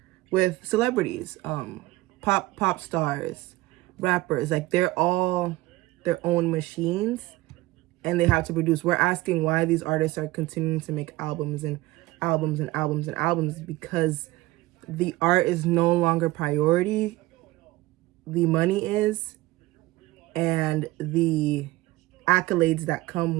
with celebrities, pop stars, rappers. Like, they're all their own machines and they have to produce. We're asking why these artists are continuing to make albums and albums and albums and albums, because the art is no longer priority. The money is, and the accolades that come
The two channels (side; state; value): left; quieter; 19.1 dB